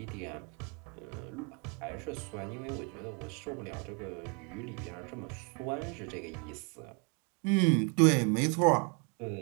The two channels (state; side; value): quieter; left; 35.2 dB